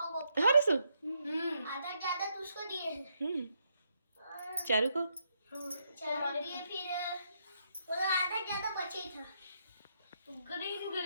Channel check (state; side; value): inverted; both; correlation -0.77